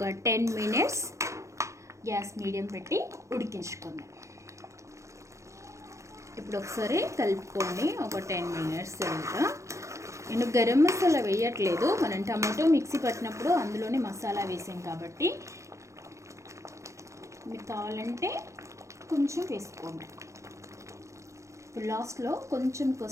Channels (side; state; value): left; late; 0.15 ms